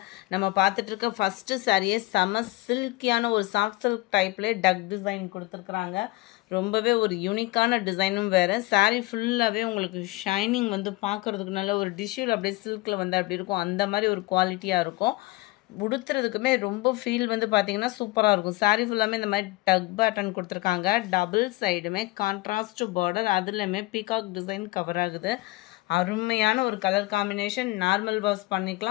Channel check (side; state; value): right; quieter; 20.6 dB